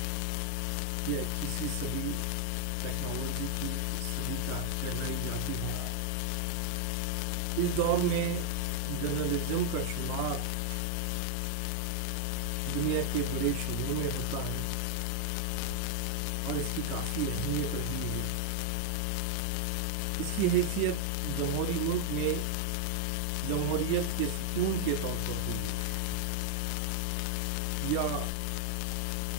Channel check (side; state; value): both; different; correlation 0.00